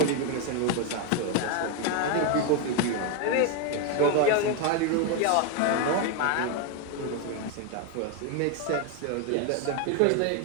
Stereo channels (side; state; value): both; different; correlation 0.01